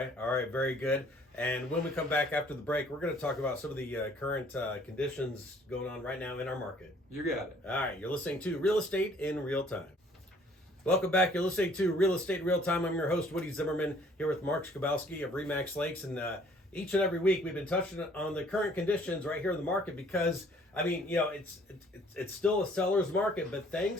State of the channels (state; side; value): normal; both; correlation 0.58